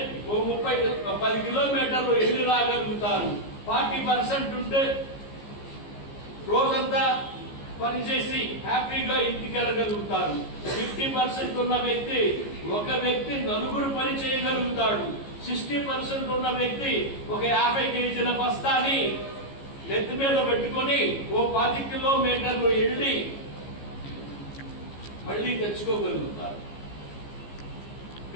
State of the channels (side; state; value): right; late; 15 ms